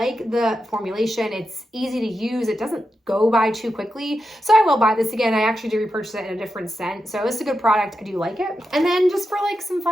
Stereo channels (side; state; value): both; normal; correlation 0.88